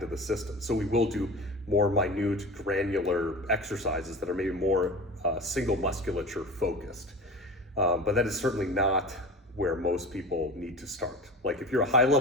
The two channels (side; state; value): both; normal; correlation 0.33